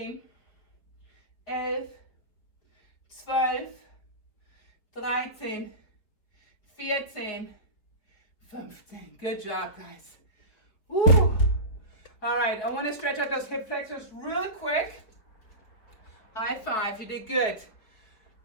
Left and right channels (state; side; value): late; right; 4.5 ms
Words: 11, 12, 13, 14, 15. Good job, guys. Woo. All right, I want to stretch out those hip flexors really quick. High five, you did good.